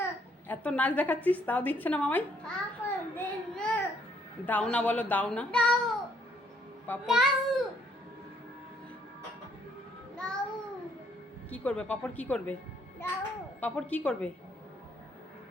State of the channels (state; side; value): normal; both; correlation 0.67